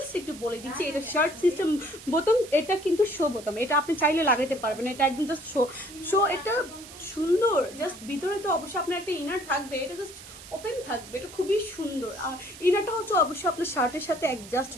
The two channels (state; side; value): noise; right; hiss, 16 dB below the sound